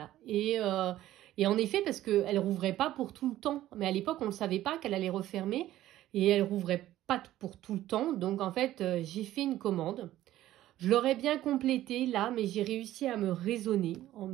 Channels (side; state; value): left; quieter; 14.1 dB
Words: Et en effet, parce qu'elle ne rouvrait pas pour tout le temps. Mais à l'époque, on ne savait pas qu'elle allait refermer. Et elle ne rouvrait pas pour tout le temps. Donc, en fait, j'ai fait une commande. Je l'aurais bien complétée là, mais j'ai réussi à me raisonner en